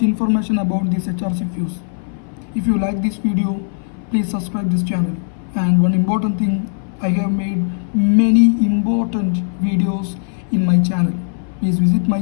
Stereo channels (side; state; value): right; silent; 59 dB below the other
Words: information about this HRC fuse. If you like this video, please subscribe this channel. And one important thing, I have made many important videos in my channel. Please visit my